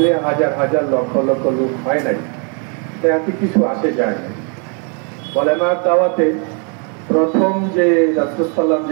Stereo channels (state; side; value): quieter; left; 38.1 dB